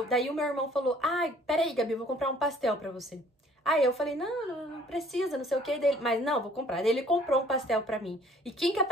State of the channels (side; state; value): both; normal; correlation 0.56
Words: o meu irmão falou, ai, peraí, Gabi, eu vou comprar um pastel pra você. Aí eu falei, não precisa, não sei o que dele. Mas não, vou comprar. Daí ele comprou um pastel pra mim. E quem que